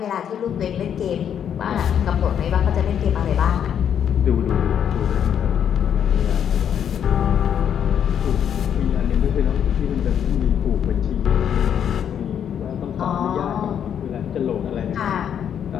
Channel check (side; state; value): right; quieter; 8.8 dB